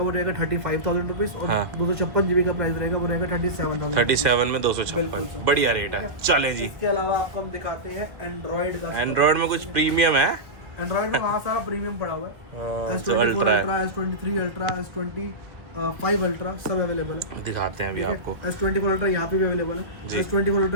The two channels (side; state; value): left; late; 1.5 ms